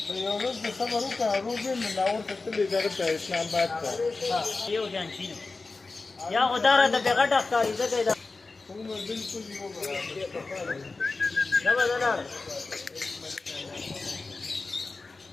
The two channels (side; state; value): right; quieter; 3.8 dB